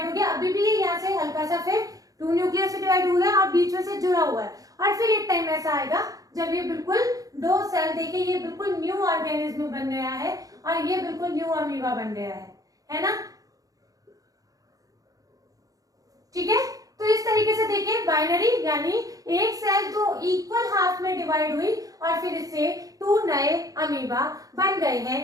हो गया। अभी भी ये यहाँ से हल्का सा फिर टू न्यूक्लियस में डिवाइड हो गया और बीच में से जुड़ा हुआ है। और फिर एक टाइम ऐसा आएगा जब ये बिल्कुल दो सेल, देखिए ये बिल्कुल न्यू ऑर्गेनिज्म बन गया है और ये बिल्कुल न्यू अमीबा बन गया है ना, ठीक है। तो इस तरीके से देखिए बाइनरी यानी एक सेल तो इक्वल हाफ में डिवाइड हुई और फिर इससे टू नए अमीबा बन गए हैं,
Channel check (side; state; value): left; late; 0.17 ms